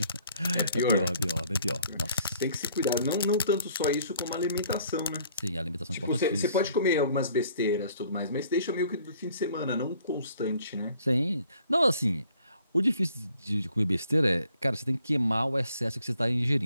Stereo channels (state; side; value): inverted; both; correlation -0.60